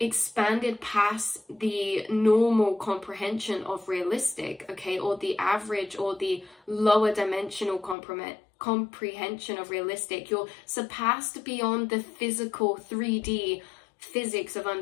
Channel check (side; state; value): right; drops out; at 8.0 s